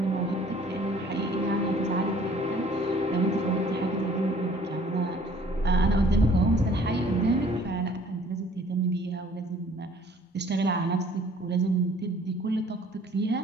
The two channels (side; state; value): both; normal; correlation 0.55